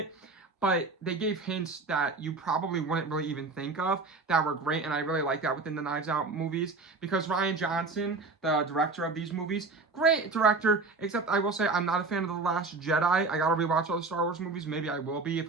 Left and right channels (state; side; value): quieter; left; 3.8 dB